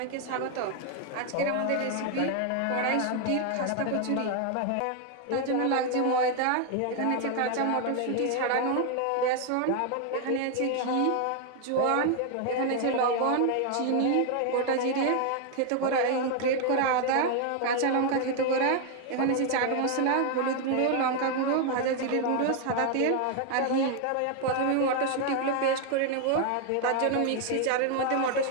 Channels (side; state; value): both; different; correlation 0.01